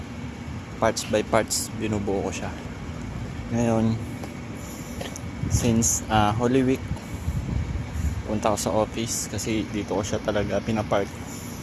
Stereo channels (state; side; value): identical; both; correlation 1.00